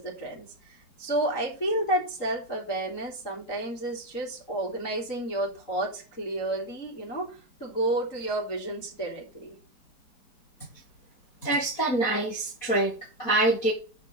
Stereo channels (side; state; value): right; late; 4.2 ms